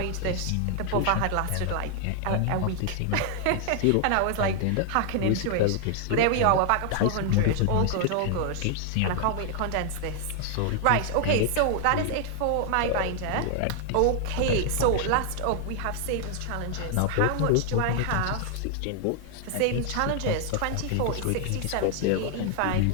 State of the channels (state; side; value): different; both; correlation 0.00